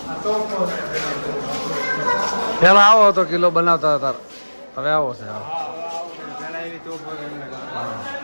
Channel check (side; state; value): both; inverted; correlation -1.00